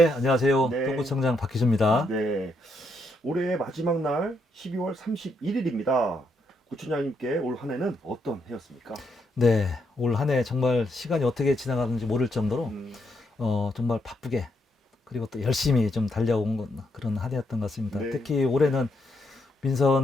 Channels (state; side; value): normal; both; correlation 0.78